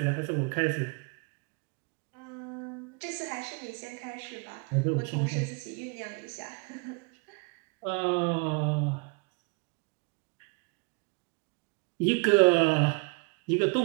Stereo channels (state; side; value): quieter; left; 32.3 dB